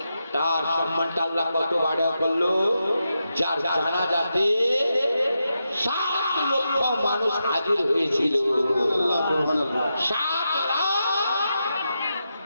তার সম্মানটা আল্লাহ কত বাড়া করলো। যার জানাজাতে 7 লক্ষ মানুষ হাজির হয়েছিল। 7 লাখ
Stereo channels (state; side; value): inverted; both; correlation -0.87